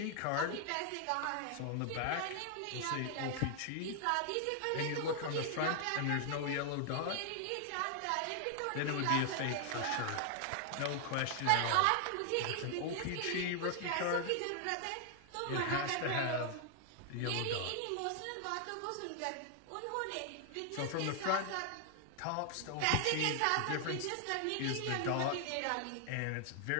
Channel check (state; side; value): different; both; correlation 0.00